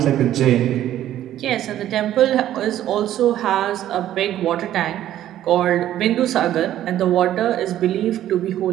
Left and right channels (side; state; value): left; quieter; 12.3 dB